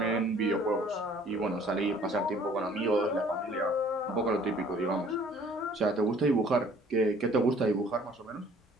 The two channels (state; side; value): normal; both; correlation 0.55